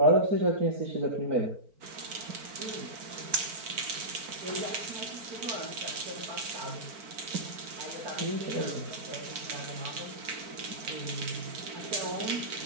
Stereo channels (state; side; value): late; left; 4.4 ms